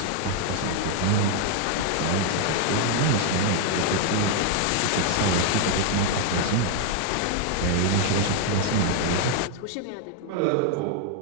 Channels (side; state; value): both; different; correlation 0.00